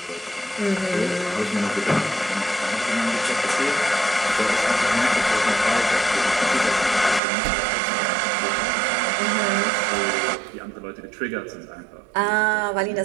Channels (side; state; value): left; drops out; at 7.2 s